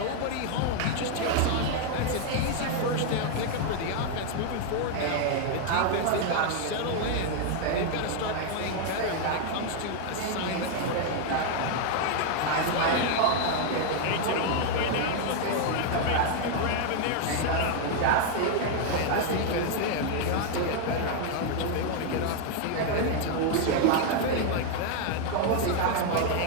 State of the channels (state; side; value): different; both; correlation 0.00